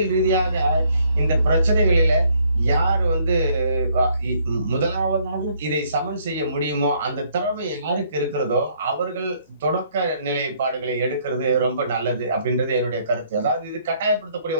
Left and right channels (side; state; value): both; inverted; correlation -0.66